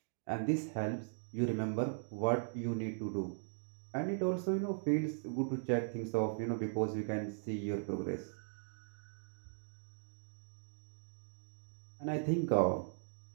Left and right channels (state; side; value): silent; left; digital silence